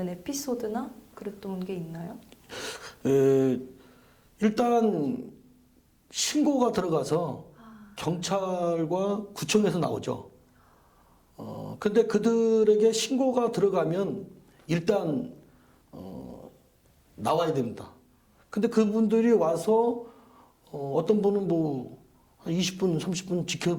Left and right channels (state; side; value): identical; both; correlation 1.00